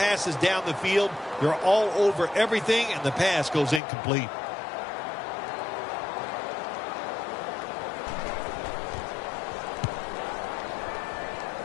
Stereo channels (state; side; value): drops out; right; at 3.8 s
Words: down the field. They're all over everything, and the pass goes incomplete.